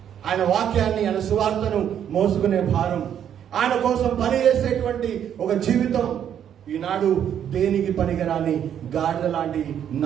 ఆయన వాక్యాన్ని, ఆయన సువార్తను మోసుకునే భారం, ఆయన కోసం పని చేసేటువంటి ఒక జీవితం ఈనాడు దేనికి పనికిరాని గాడిద లాంటి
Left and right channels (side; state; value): left; quieter; 9.4 dB